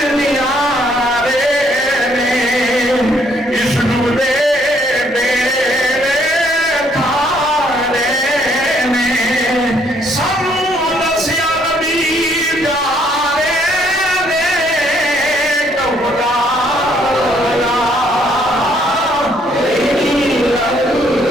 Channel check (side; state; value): both; normal; correlation 0.67